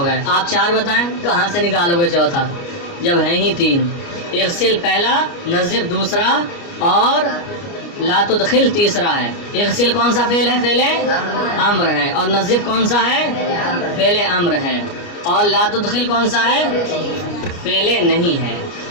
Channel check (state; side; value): late; right; 29 ms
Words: گئے۔ آپ 4 بتائیں، کہاں سے نکالو گے چوتھا جب ہیں ہی 3؟ اغسل پہلا، نظف دوسرا، اور لا تدخل تیسرا ہے۔ اغسل کون سا فعل ہے؟ فعل امر ہے، اور نظف کون سا ہے؟ فعل امر ہے، اور لا تدخل کون سا ہے؟ فعل نہیں ہے۔